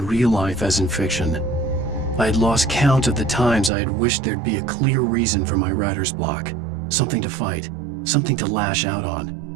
real life as in fiction. I had lost count of the times I had wished there'd be a clear reason for my writer's block. Something to fight, something to lash out on.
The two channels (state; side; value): drops out; left; at 3.7 s